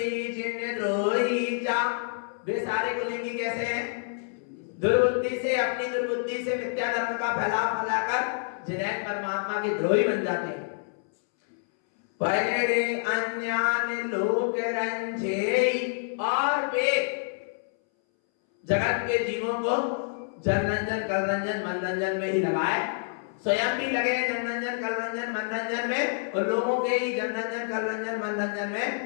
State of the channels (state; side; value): silent; right; 60 dB below the other